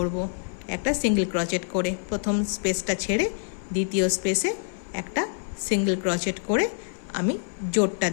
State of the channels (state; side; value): silent; right; 58 dB below the other